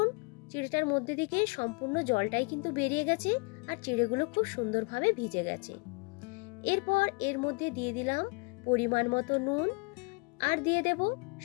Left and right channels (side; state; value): right; quieter; 31.2 dB